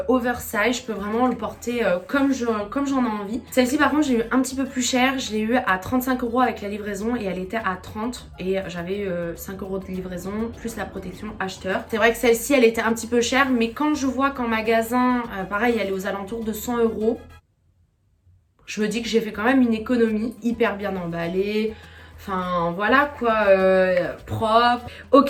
oversize, je peux vraiment le porter comme j'en ai envie. Celle-ci par contre, j'ai eu un petit peu plus cher, je l'ai eu à 35 € avec la livraison et elle était à 30 et j'avais 5 € de livraison plus la protection acheteur. C'est vrai que celle-ci, elle était un petit peu chère, mais quand je vois qu'en magasin, pareil, elle est aux alentours de 100 €, je me dis que j'ai fait quand même une économie, hyper bien emballée. Enfin voilà quoi, propre,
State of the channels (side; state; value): both; identical; correlation 1.00